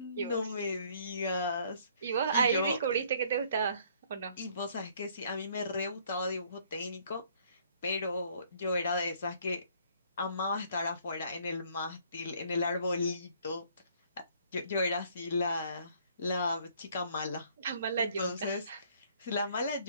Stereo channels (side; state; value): both; inverted; correlation -0.61